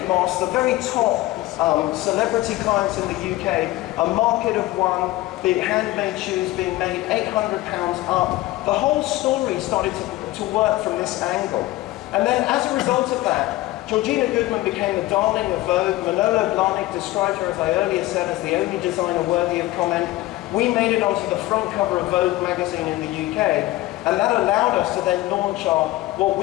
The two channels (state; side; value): quieter; right; 17.4 dB